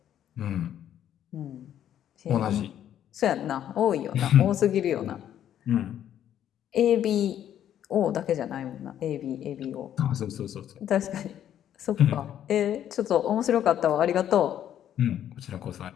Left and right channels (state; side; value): quieter; right; 10.5 dB